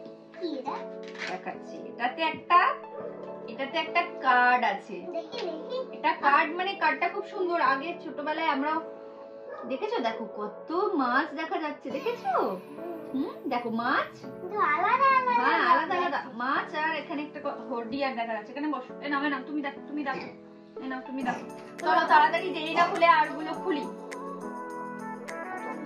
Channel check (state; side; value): identical; both; correlation 1.00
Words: দেখাচ্ছি, এটাতে একটা কার্ড আছে। এটা কার্ড, মানে কার্ডটা খুব সুন্দর। আগে ছোটবেলায় আমরা দেখেছো, দেখো কত মাছ দেখা যাচ্ছে, দেখেছো? দেখো মাছ, হ্যাঁ আলাদা আলাদা মাছ। আর এখানে একটা হর্ডিয়ার দেখা যাচ্ছে। এখানে বসো, এ নাও তুমি দেখো, তুমি দেখো, এ নাও তুমি দেখো। চলো তাড়াতাড়ি, দেরি না খুলে আর গুলো খুলি।